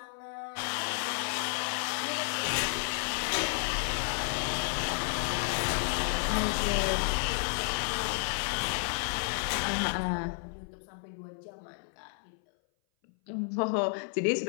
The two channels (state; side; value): silent; right; 57 dB below the other